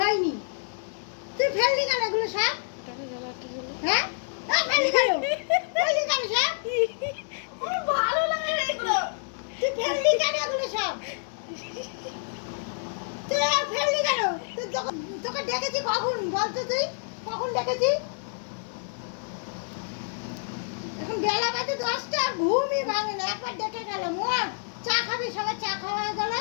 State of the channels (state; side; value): silent; right; digital silence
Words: তুই ফেললি কেন এগুলো সব? হ্যাঁ? ফেললি কেন? ফেললি কেন সব? ভালো লাগে না এগুলো। তুই ফেললি কেন এগুলো সব? তুই ফেললি কেন? তোকে ডেকেছি কখন? বলতো তুই কখন ডেকেছি? এখন বেলা বাজে 10টা, ঘুমই ভাঙে না। একবার ডেকে গেলাম, চা খাবি? সবাই চা খাওয়া হয়ে গেল।